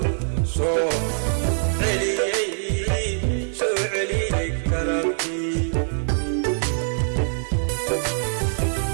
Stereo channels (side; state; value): left; silent; 63 dB below the other